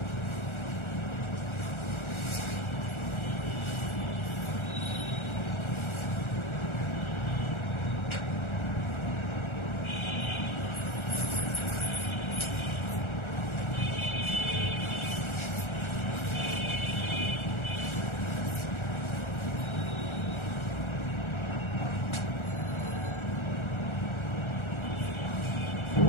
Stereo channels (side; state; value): right; late; 1.4 ms